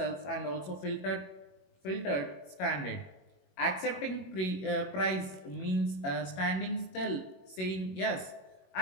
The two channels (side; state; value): right; late; 21 ms